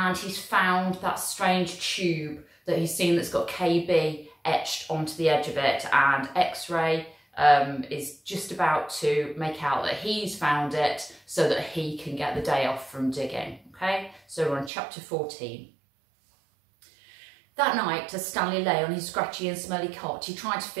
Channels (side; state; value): left; drops out; at 14.7 s